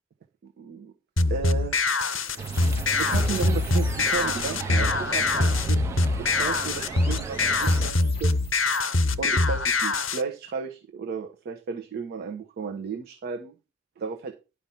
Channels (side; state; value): both; normal; correlation 0.51